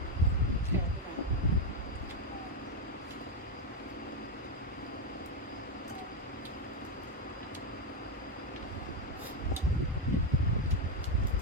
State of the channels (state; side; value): normal; both; correlation 0.05